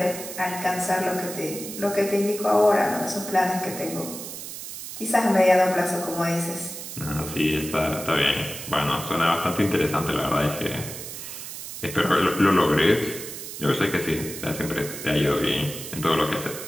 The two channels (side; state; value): right; noise; hiss, 10 dB below the sound